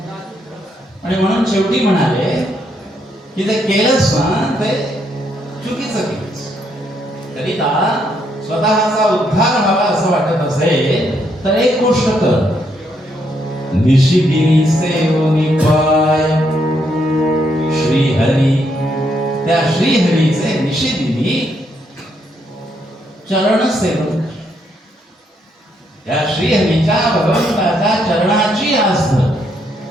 आणि म्हणून शेवटी म्हणाले की ते केलंस ना ते चुकीचं केलंस. करिता स्वतःचा उद्धार व्हावा असं वाटत असेल तर एक गोष्ट कर. निशिदिनी सेवनी पाय श्रीहरी. त्या श्रीहरीचे निशिदिनी चरण सेवन. त्या श्रीहरीच्या भगवंताच्या चरणाची आस धर.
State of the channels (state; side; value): normal; both; correlation 0.75